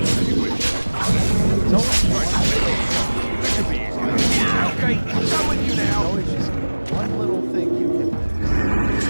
Okay, showing you now. No, it's just one little thing you can fix.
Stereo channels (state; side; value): inverted; both; correlation -1.00